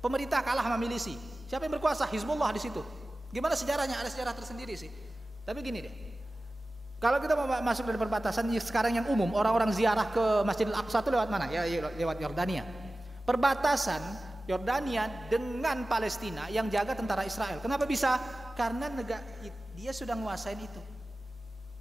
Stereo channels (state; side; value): normal; both; correlation 0.96